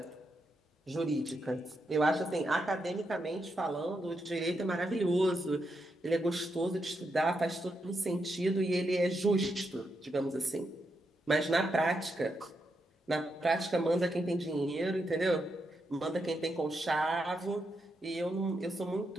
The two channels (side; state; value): both; normal; correlation 0.83